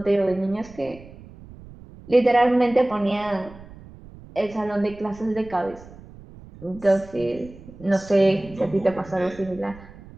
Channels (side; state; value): right; noise; rumble, 19 dB below the sound